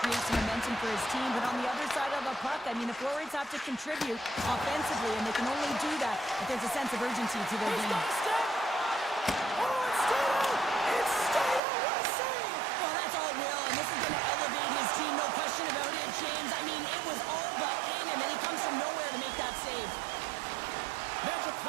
some momentum for his team. But on the other side of the puck, I mean, the forwards have to contribute offensively, and they can only do that if there's a sense of urgency to their game. Well, that's all Will, and this is going to elevate his team, no question about it, James. I mean, it was all but in him, and he comes from nowhere to make that save.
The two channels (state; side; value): drops out; left; at 11.6 s